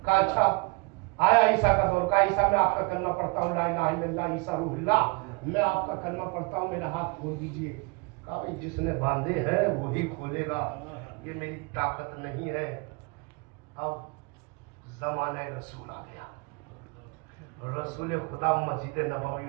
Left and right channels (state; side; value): quieter; left; 29.5 dB